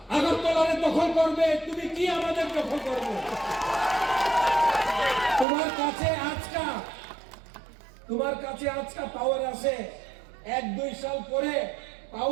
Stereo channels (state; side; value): drops out; left; at 5.5 s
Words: আগরতলারে দখল করবে, তুমি কি আমাদের দখল করবে? তোমার কাছে আজকা পাওয়ার আছে, 1-2 সাল পরে